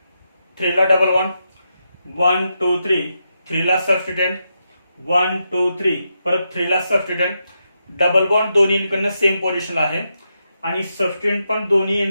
3 ला डबल बॉन्ड. 1 2 3, 3 ला सबस्टिट्यूएंट. 1 2 3, परत 3 ला सबस्टिट्यूएंट. डबल बॉन्ड दोन्ही एंडकडनं सेम पोझिशनला आहे आणि सबस्टिट्यूएंट पण दोन्ही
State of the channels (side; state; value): both; inverted; correlation -0.85